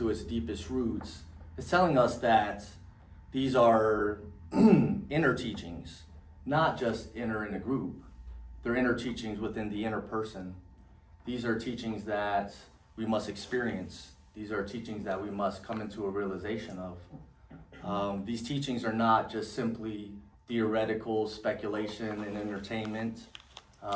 its deepest roots, it's telling us that these are inner teachings, not just inner in a group. They're inner teachings within the inner person. These are teachings that we must experience. These are teachings that we must come into a realization of. These teachings are not just simply theoretical speculation and entertainment.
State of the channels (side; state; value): both; identical; correlation 1.00